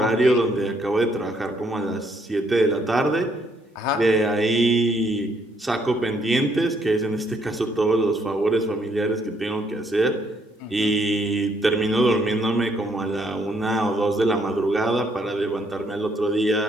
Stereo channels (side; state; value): both; normal; correlation 0.70